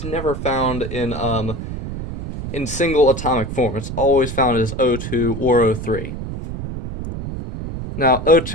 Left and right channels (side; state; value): right; noise; rumble, 7 dB below the sound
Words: never found in single atomic form. It's always found as O2 or O3. Now,